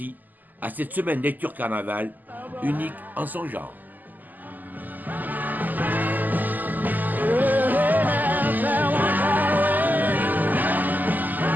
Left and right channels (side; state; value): left; late; 0.084 ms